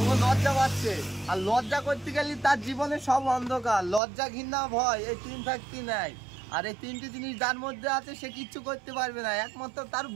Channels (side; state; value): left; drops out; at 4.0 s